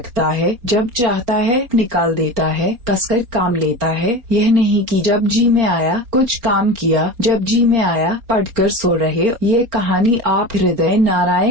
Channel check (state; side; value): late; left; 4.3 ms